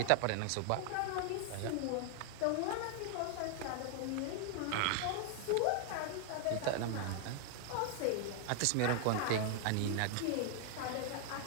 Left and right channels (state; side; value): different; both; correlation 0.00